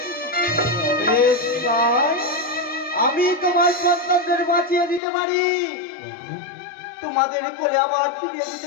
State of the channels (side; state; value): right; drops out; at 5.0 s